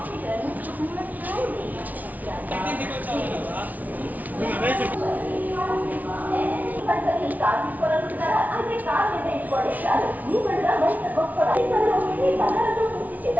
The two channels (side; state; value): left; late; 0.075 ms